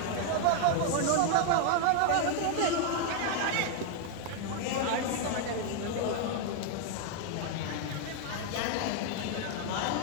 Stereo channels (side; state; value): both; different; correlation 0.00